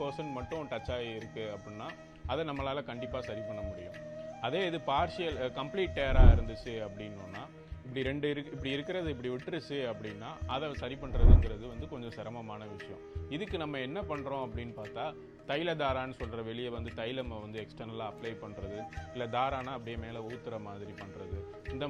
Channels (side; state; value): both; identical; correlation 1.00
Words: மட்டும் டச் ஆகி இருக்குது அப்படின்னா அதை நம்மளால் கண்டிப்பாக சரி பண்ண முடியும். அதே இது கம்ப்ளீட் டேராக இருந்துச்சு அப்படின்னா இப்படி இருக்கிறது இப்படி விட்டுருச்சு அப்படின்னா அதை சரி பண்ணுறதுங்கிறது வந்து கொஞ்சம் சிரமமான விஷயம். இதுக்கு நம்ம என்ன பண்ணுறோம் அப்படின்னு பார்த்தா, தைல தாரான்னு சொல்கிற வெளியே வந்து தைலமை வந்து எக்ஸ்டர்னலாக அப்ளை பண்ணுறது, இல்லை தாரானா அப்படியே மேலே ஊற்றுற மாதிரி பண்ணுறது, இந்த